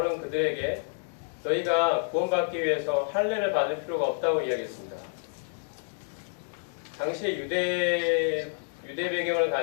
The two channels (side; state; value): right; silent; digital silence